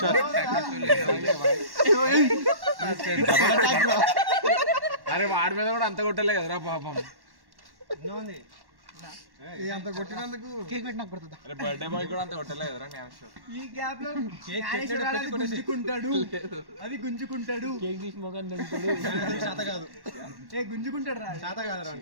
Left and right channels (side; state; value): left; late; 1.1 ms